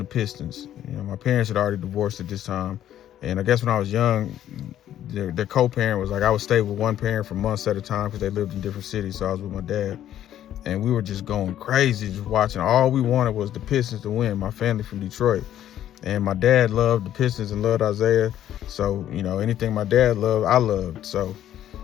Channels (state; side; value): quieter; right; 11.5 dB